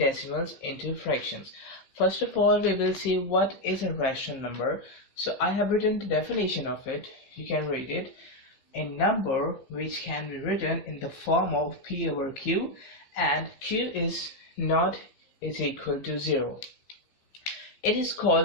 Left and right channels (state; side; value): late; right; 15 ms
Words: into fractions. First of all, we will see what is a rational number. So I have written the definition of it. You can read it. A number which can be written in the form of P over Q, and Q is equal to 0. It is